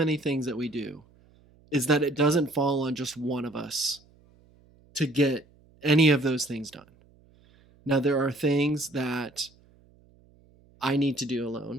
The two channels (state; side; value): noise; right; hum, 30 dB below the sound